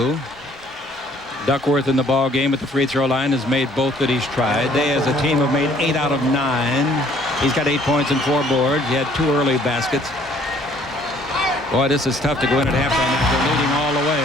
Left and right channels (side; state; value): both; normal; correlation 0.59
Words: Duckworth in the ball game at the free throw line has made both that he's tried. They as a team have made 8 out of 9. He's got 8 points and 4 boards. He had 2 early baskets. Boy, this is tough to go in at halftime after leading all the